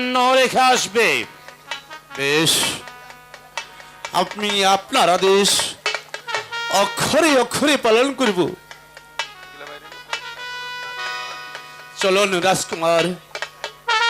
রেখে আসবে। বেশ, আপনি আপনার আদেশ অক্ষরে অক্ষরে পালন করব। চলুন রাজকুমার।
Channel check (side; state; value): both; identical; correlation 1.00